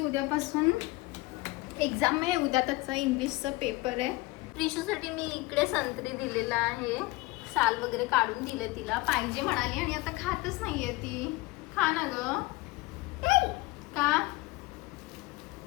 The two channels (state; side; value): quieter; right; 22.2 dB